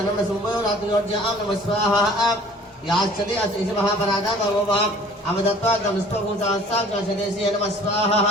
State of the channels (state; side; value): normal; both; correlation 0.50